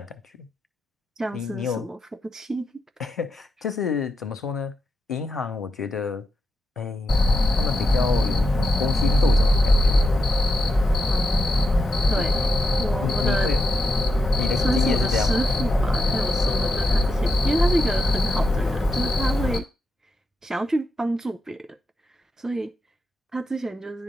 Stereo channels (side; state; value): both; normal; correlation 0.86